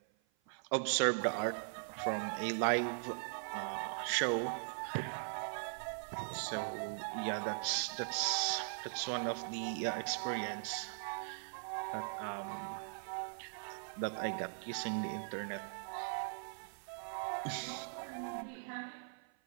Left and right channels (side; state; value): left; silent; 51 dB below the other